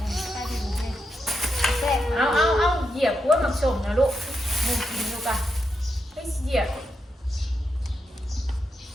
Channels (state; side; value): normal; both; correlation 0.84